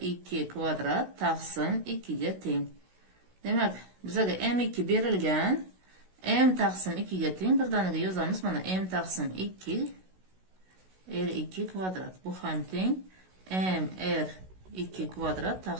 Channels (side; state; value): left; late; 16 ms